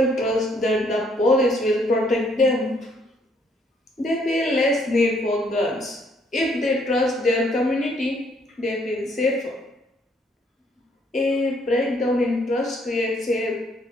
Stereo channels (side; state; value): both; normal; correlation 0.68